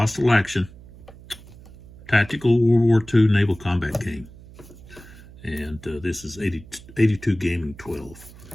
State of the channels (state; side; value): noise; right; hum, 20 dB below the sound